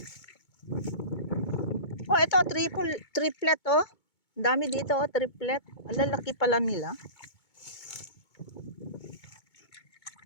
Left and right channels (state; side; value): late; right; 2.2 ms